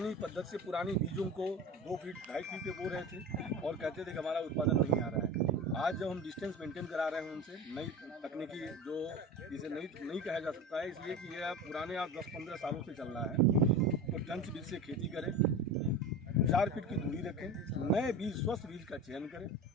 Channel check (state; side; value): normal; both; correlation 0.30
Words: पद्धति से पुरानी बीजों को 2 फीट 2.5 फीट पे बो रहे थे और कहते थे कि हमारा उत्पादन नहीं आ रहा है। आज जब हम डिस्टेंस मेंटेन करा रहे हैं उनसे नई तकनीकी जो इसे नहीं कहा जा सकता है, इसलिए कि यह पुराने आज 10-15 सालों से चल रहा है। तो टंच बीज से खेती करें, 4 फीट की दूरी रखें, नए बीज स्वस्थ बीज का चयन करें।